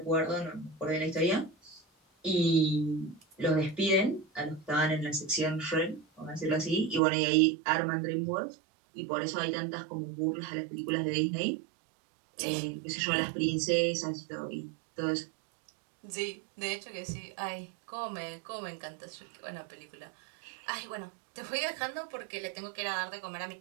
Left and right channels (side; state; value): left; drops out; at 7.0 s